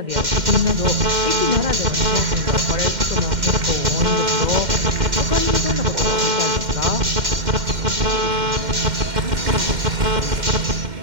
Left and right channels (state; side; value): late; left; 2.1 ms